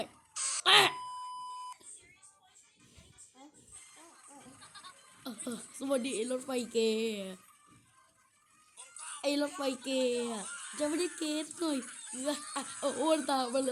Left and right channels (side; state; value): both; identical; correlation 1.00